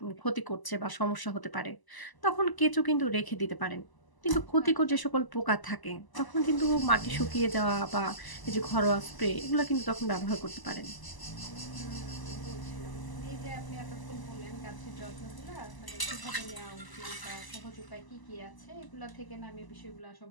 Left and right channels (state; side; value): late; right; 1.0 ms